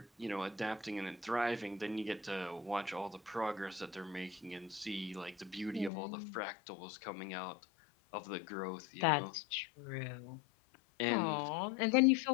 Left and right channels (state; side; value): drops out; right; at 5.9 s